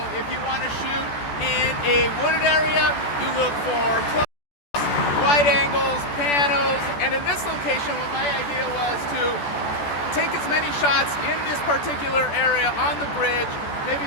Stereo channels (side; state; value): right; late; 14 ms